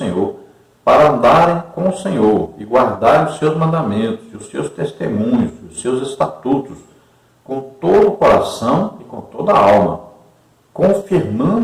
para andarem com o Senhor, e guardarem os seus mandamentos, e os seus testemunhos, e os seus estatutos, com todo o coração e com toda a alma,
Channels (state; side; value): identical; both; correlation 1.00